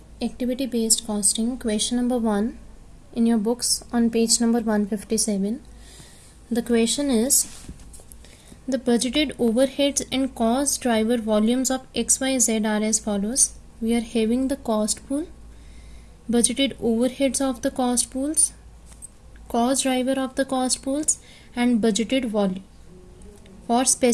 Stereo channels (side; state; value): both; identical; correlation 1.00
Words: activity based costing, question number 1 in your books on page number 157. The question is, the budgeted overheads and cost driver volumes of XYZ are as follows. We are having the cost pool, budgeted overheads of the cost pools, cost driver of the cost pools, and budgeted volume for